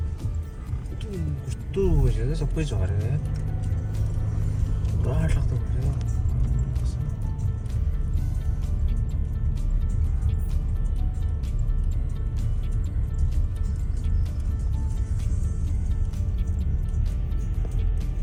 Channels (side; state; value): both; identical; correlation 1.00